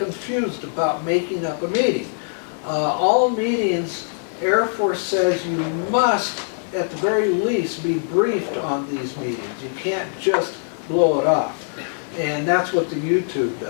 about making up a meeting. All meetings, Air Force says you must, at the very least, be briefed on these meetings. You can't just blow it off. And that's what the YouTube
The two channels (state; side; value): silent; right; 64 dB below the other